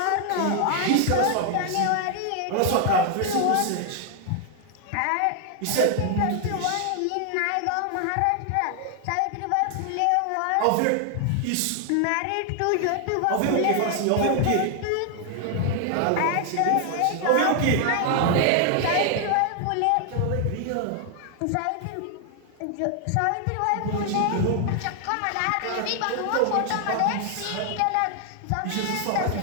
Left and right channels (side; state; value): both; different; correlation 0.00